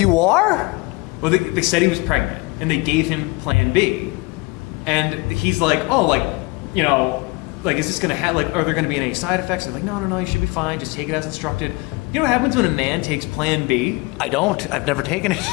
are? Well, they said he was pregnant, and they gave him Plan B, and he's like, is this gonna have are there gonna be any side effects? They're like, no, you should be fine. Just take it as instructed. You know what happens when a man takes Plan B? I don't. I've never taken it.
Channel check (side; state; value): right; quieter; 25.2 dB